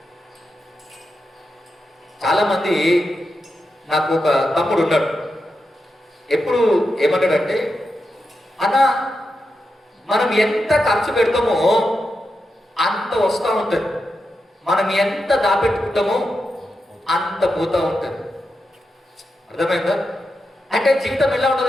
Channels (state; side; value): normal; both; correlation 0.88